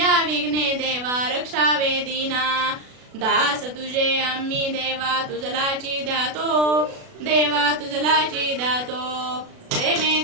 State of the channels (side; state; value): left; late; 36 ms